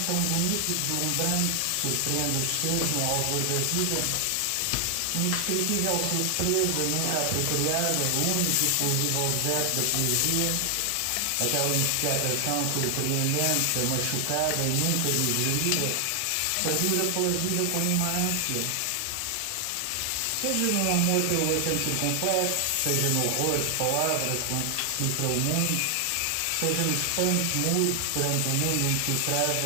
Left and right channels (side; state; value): both; different; correlation 0.00